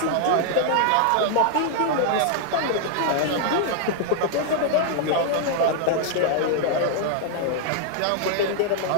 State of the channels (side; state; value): both; different; correlation 0.00